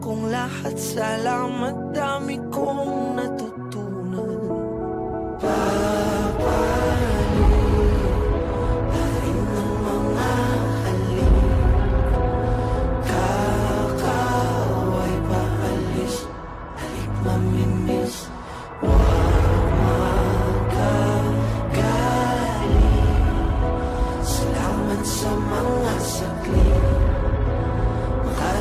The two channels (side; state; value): both; identical; correlation 1.00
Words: kong lahat, salamat, dami kong natutunan. Papalit ng mga halik, kakaway paalis, halik mamimiss, wag magagaling. Salamat sa mga saglit,